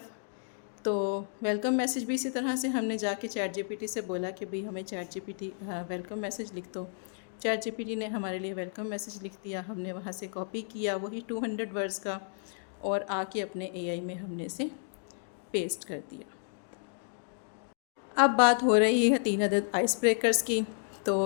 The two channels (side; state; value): right; silent; digital silence